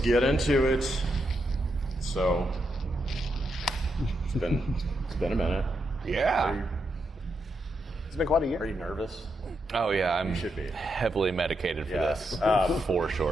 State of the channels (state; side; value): normal; both; correlation 0.83